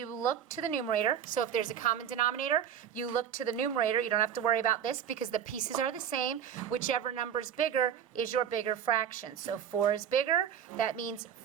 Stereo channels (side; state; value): left; quieter; 9.1 dB